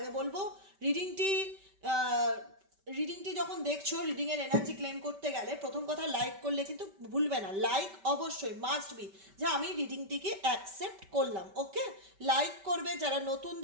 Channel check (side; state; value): left; late; 5.1 ms